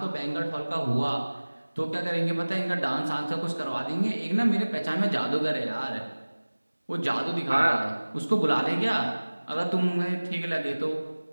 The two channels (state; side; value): inverted; both; correlation -1.00